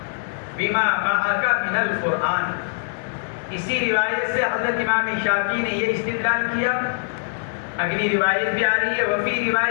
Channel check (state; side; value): silent; right; 64 dB below the other